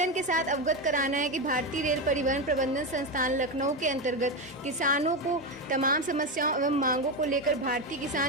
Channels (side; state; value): both; normal; correlation 0.13